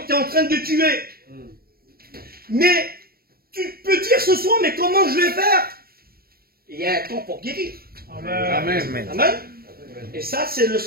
tu es en train de tuer. Mais tu peux dire ce soir, mais comment je vais faire? Il y a un temps pour guérir. Amen. Amen. Amen. Et ça, c'est le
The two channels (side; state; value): left; late; 0.44 ms